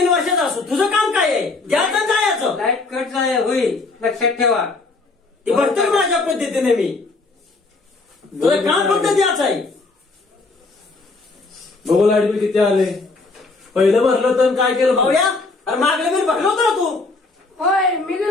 वर्षाचं असो. तुझं काम काय आहे द्यायचं जायचं. लाईट कट होईल लक्षात ठेवा. ते भरतो माझ्या पद्धतीने मी. तुझं काम फक्त द्यायचं आहे. बघू लाईट बिल किती आले. पहिलं भरलं तर काय केलं भाऊया. अरे मागलं बिल भरलं होतं ना तू. होय मी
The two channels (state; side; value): quieter; right; 3.6 dB